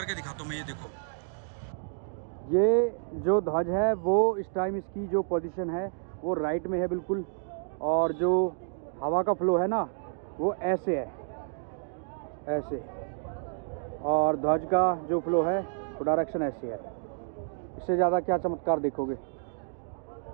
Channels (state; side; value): silent; left; digital silence